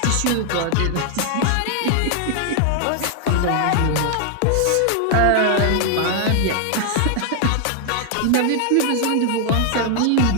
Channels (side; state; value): both; different; correlation 0.00